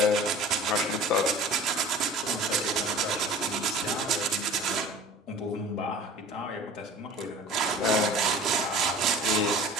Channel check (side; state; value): both; normal; correlation 0.43